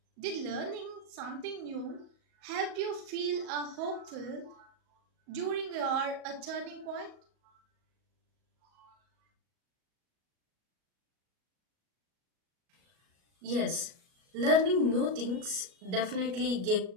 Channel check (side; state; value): left; late; 37 ms